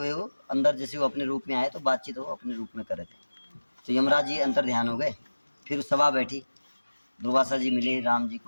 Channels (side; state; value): both; inverted; correlation -1.00